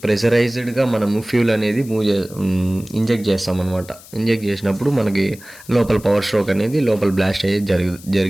ప్రెషరైజ్డ్గా మనము ఫ్యూల్ అనేది ఇంజెక్ట్ చేస్తామన్నమాట. ఇంజెక్ట్ చేసినప్పుడు మనకి లోపల పవర్ స్ట్రోక్ అనేది లోపల బ్లాస్ట్ అయ్యేది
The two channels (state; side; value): noise; left; hiss, 20 dB below the sound